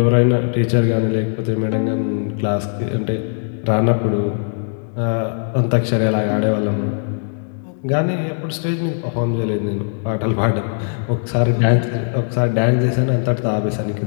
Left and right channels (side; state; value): right; silent; digital silence